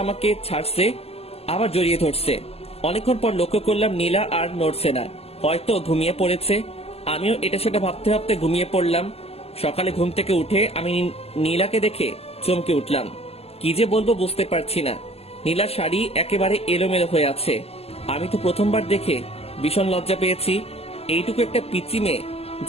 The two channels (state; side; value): late; right; 0.29 ms